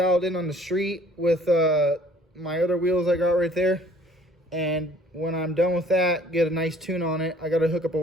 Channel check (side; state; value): both; normal; correlation 0.56